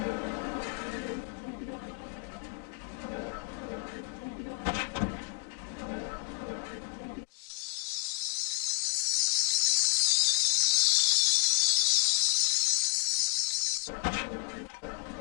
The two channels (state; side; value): quieter; right; 30.9 dB